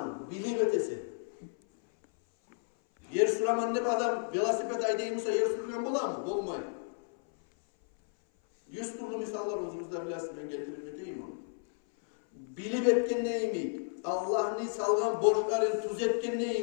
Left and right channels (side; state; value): right; silent; 56 dB below the other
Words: bilim ötesi. Yer sürəman ne adam velosiped aydayımsa yer sürülgen bular mı? Olmayın. 100 türlü misallar özümüzde biləsiniz, ben getirim edeyim onu. Bilip etken neyimi? Allah'ın salgan borçların tuz etken